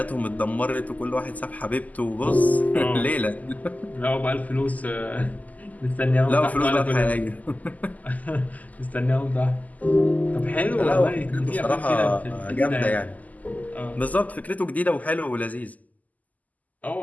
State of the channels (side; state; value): right; late; 0.078 ms